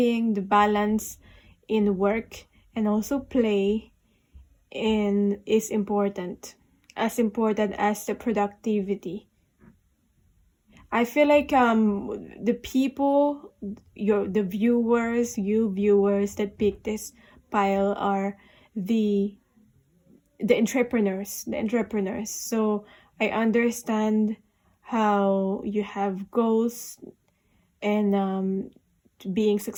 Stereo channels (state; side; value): identical; both; correlation 1.00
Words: the balance in work and also play is important as the productivity. I feel like the people, the viewers, you viewers that pick this pile are the entrepreneurs. So I understand how you have goals and being